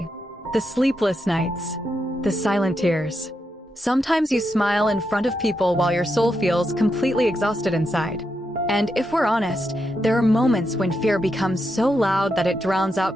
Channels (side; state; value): both; normal; correlation 0.84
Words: the sleepless nights, the silent tears. Sometimes you smile in front of people while your soul feels completely exhausted inside. And if we're honest, there are moments when fear becomes so loud that it drowns